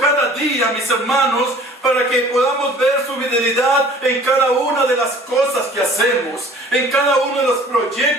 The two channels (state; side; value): normal; both; correlation 0.49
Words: día, mis hermanos, para que podamos ver su fidelidad en cada una de las cosas que hacemos, en cada uno de los